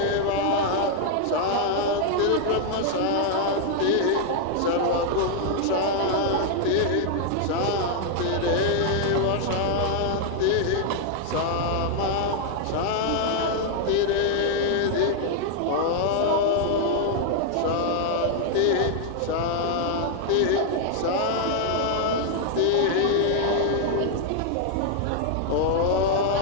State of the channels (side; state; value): both; different; correlation 0.00